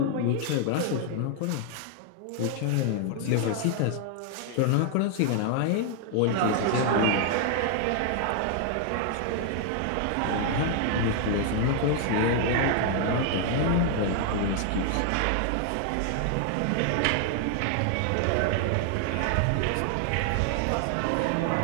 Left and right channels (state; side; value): different; both; correlation 0.00